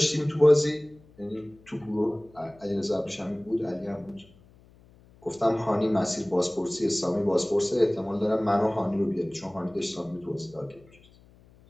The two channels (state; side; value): noise; left; hum, 27 dB below the sound